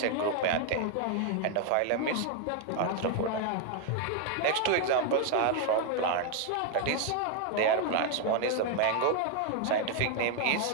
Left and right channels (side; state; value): both; different; correlation 0.00